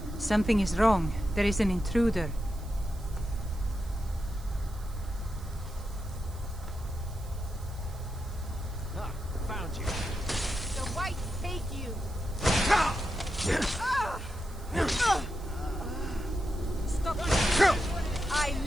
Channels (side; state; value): right; noise; hiss, 22 dB below the sound